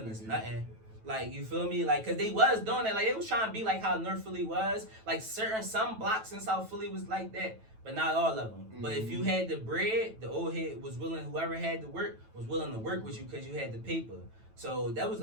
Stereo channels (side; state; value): left; late; 9.1 ms